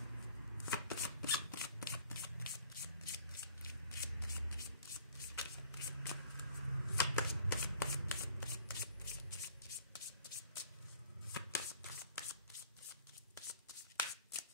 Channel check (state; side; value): inverted; both; correlation -0.52